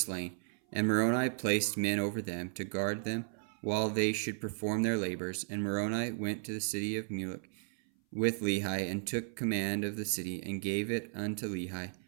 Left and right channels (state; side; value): silent; left; 55 dB below the other